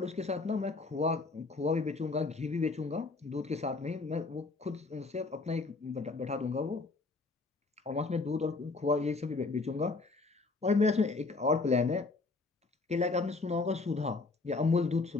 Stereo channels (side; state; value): right; quieter; 3.8 dB